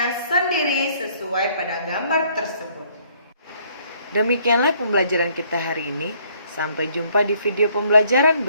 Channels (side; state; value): both; inverted; correlation -0.64